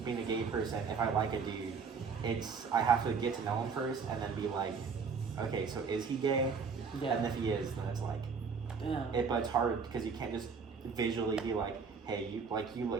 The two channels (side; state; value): left; quieter; 5.5 dB